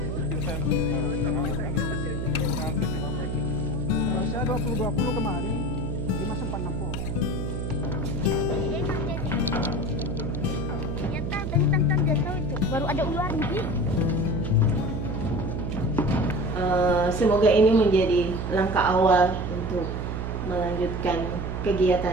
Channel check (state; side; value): noise; right; hum, 3 dB below the sound